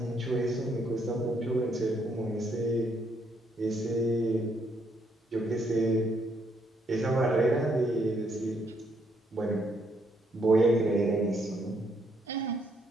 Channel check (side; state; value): both; normal; correlation 0.73